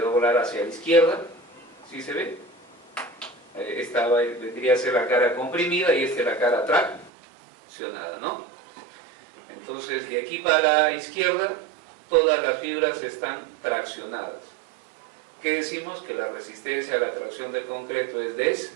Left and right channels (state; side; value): drops out; left; at 7.1 s